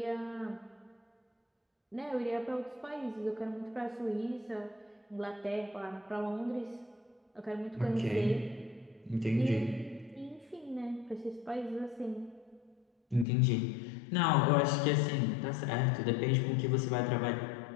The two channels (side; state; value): right; drops out; at 13.2 s